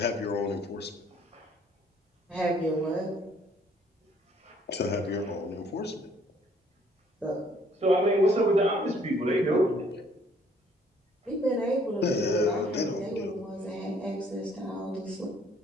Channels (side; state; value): both; normal; correlation 0.61